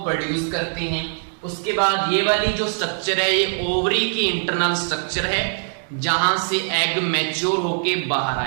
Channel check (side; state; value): left; silent; digital silence